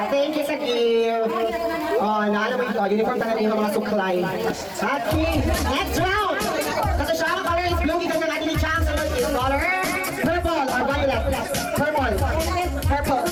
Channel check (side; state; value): both; identical; correlation 1.00